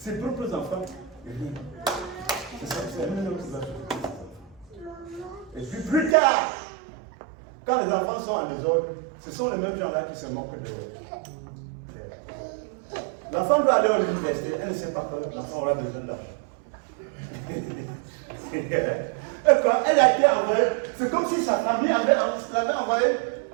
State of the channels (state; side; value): drops out; left; at 6.2 s